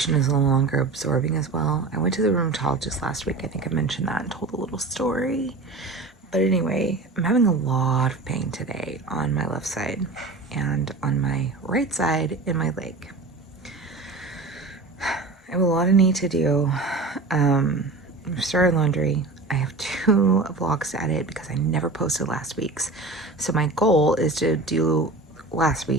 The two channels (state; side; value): quieter; left; 3.4 dB